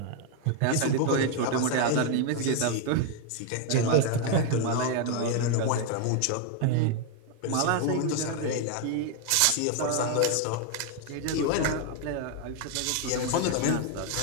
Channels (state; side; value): different; both; correlation 0.01